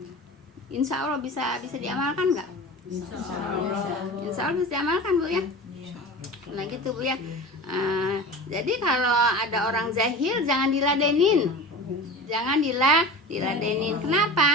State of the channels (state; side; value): normal; both; correlation 0.34